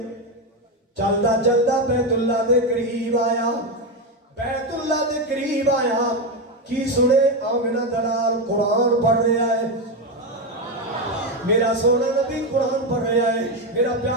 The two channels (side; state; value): both; normal; correlation 0.10